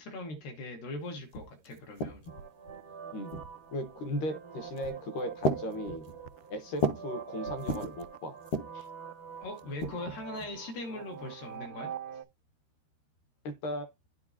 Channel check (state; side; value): late; right; 13 ms